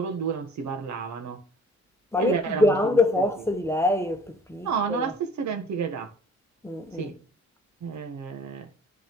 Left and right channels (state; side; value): normal; both; correlation 0.50